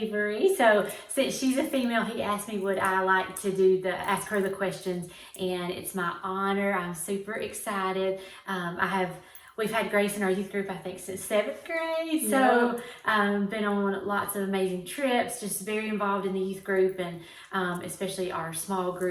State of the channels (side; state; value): both; identical; correlation 1.00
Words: So since she's a female, he asked me would I like to ask her the questions, and it's my honor. I'm super excited. We've had Grace in our youth group, I think, since seventh grade. So been on lots of amazing trips, just very involved in the youth group, and especially our small